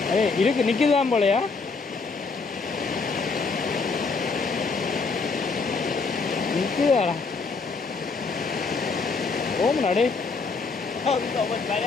இருக்கு நிற்குதான் போலையா. நிற்குதாடா ஓமனாடே.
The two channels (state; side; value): quieter; right; 4.5 dB